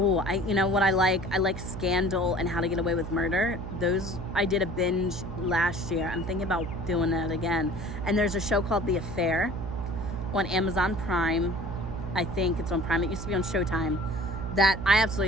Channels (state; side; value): noise; right; hum, 7 dB below the sound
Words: you know what I like Scandal and How to Get Away with Murder. Those, I did a binge last year. I'm thinking about doing that again. And there's a show called The Affair on Amazon Prime. I think it's on Prime. It used to be on Showtime. That I